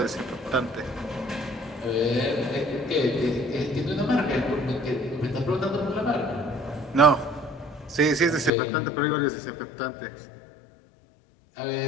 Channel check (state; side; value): drops out; right; at 8.5 s